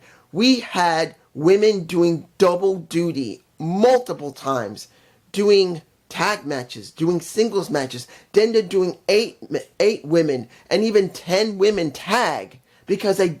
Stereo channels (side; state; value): both; identical; correlation 1.00